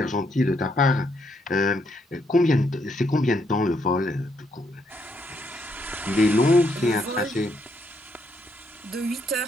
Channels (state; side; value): normal; both; correlation 0.75